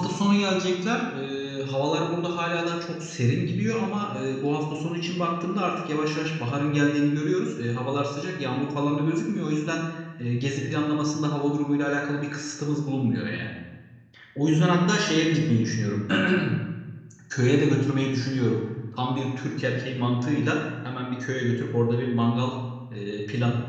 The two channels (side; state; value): both; identical; correlation 1.00